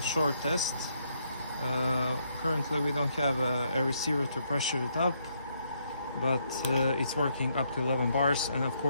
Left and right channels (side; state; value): both; inverted; correlation -0.74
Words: short test. Currently we don't have a receiver to pressure it up, but it's working up to 11 bars, and of